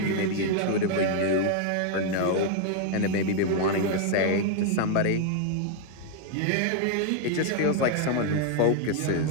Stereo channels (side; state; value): both; different; correlation 0.00